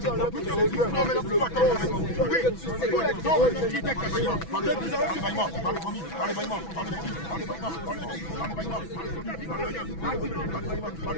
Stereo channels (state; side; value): late; right; 6.1 ms